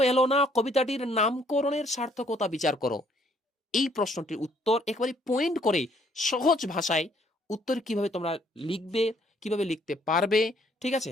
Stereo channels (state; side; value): normal; both; correlation 0.65